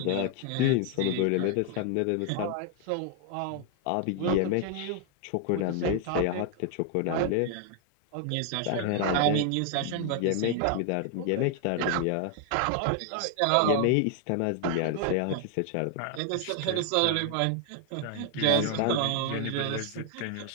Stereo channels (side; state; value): both; different; correlation 0.00